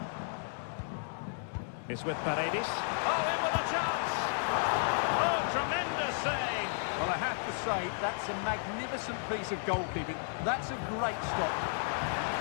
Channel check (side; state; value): right; silent; digital silence